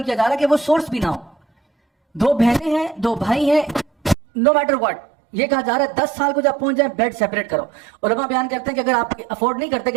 کیا جا رہا ہے کہ وہ سورس بھی نہ ہو. 2 بہنیں ہیں، 2 بھائی ہیں، نو میٹر واٹ، یہ کہا جا رہا ہے 10 سال کو جب پہنچ جائے بیڈ سیپریٹ کرو. علماء بیان کرتے ہیں کہ اگر آپ افورڈ نہیں کرتے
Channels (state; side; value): drops out; left; at 4.2 s